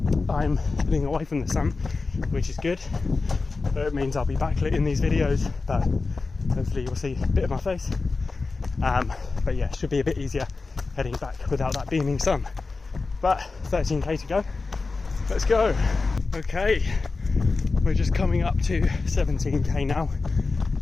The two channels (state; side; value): quieter; right; 4.0 dB